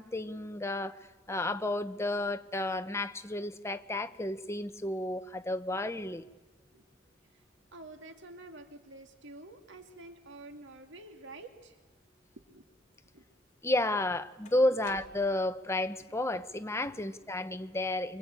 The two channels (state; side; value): normal; both; correlation 0.64